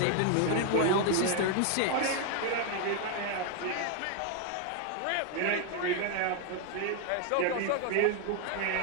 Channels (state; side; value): different; both; correlation 0.00